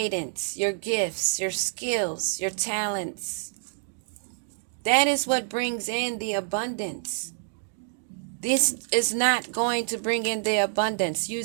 your gifts, your skills, your talents. That is what brings in the abundance. This is not going to bring in the abundance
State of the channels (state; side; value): silent; left; digital silence